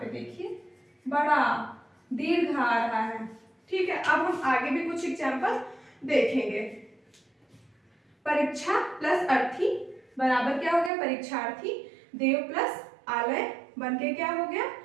देखिए बड़ा दीर्घ आ रहा है। ठीक है, अब हम आगे भी कुछ एग्जाम्पल देखेंगे। परीक्षा प्लस अर्थी बराबर क्या हो गया, परीक्षार्थी, देव प्लस आलय बन के क्या हो गया,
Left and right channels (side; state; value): left; drops out; at 10.9 s